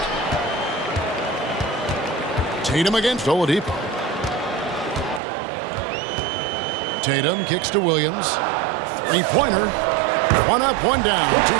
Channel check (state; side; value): drops out; left; at 5.2 s